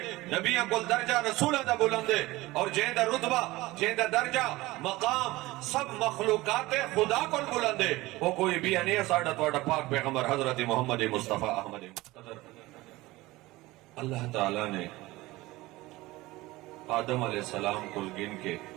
نبیاں کل درجہ رسولہ دا بلندے، اور جہیں دا رتبہ جہیں دا درجہ مقام سب مخلوقات خدا کل بلندے، وہ کوئی بھی نہیں ہے ساڑھا توڑا پاک پیغمبر حضرت محمد مصطفیٰ احمد مقتدر۔ اللہ تعالیٰ نے آدم علیہ السلام کو گن کے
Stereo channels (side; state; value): left; quieter; 19.5 dB